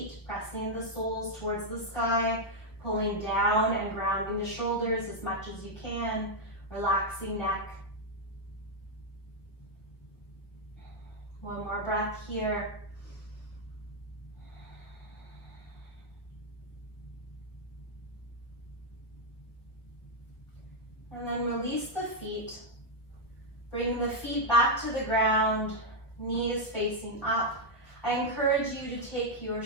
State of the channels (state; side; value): late; right; 1.5 ms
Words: pressing the soles towards the sky, pulling down and grounding the shoulders as much as you can, relaxing neck. One more breath here. And then release the feet. Bring the feet back to the ground, knees facing up. I encourage you to take your